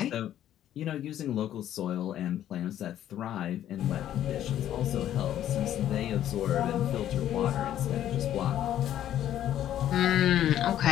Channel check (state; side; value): quieter; right; 11.6 dB